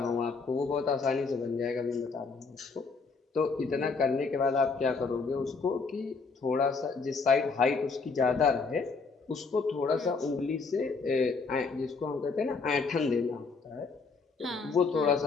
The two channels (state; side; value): quieter; right; 4.5 dB